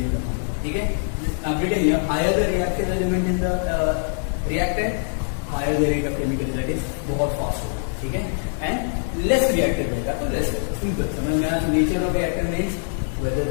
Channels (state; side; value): silent; right; digital silence